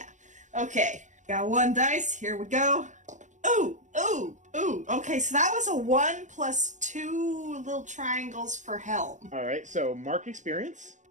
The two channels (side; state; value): left; late; 0.35 ms